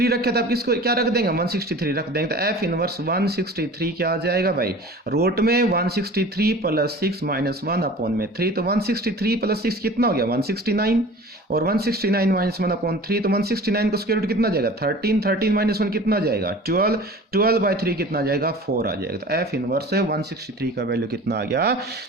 रखे तो आप किसको क्या रख देंगे 163 रख देंगे। तो f इनवर्स 163 क्या आ जाएगा भाई रूट में 163 + 6 - 1/3। तो 163 + 6 कितना हो गया 169, और 169 - 1/3। तो 169 का स्क्वायर रूट कितना जाएगा 13, 13 - 1 कितना जाएगा 12, 12/3 कितना जाएगा 4 आ जाएगा। तो f इनवर्स 163 का वैल्यू कितना आ गया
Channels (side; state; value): both; normal; correlation 0.41